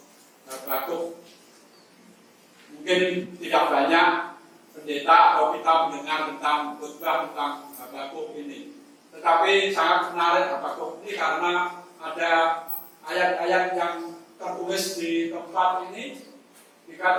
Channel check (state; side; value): identical; both; correlation 1.00